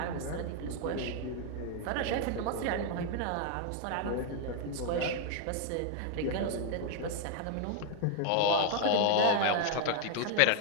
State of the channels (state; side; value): different; both; correlation 0.00